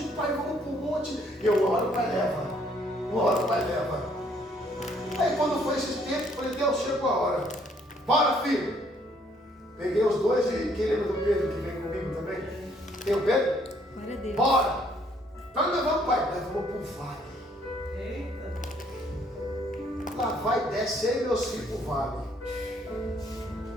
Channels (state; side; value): normal; both; correlation 0.66